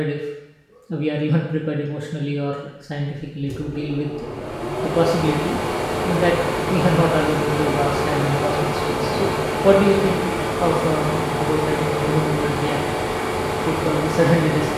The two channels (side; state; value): both; identical; correlation 1.00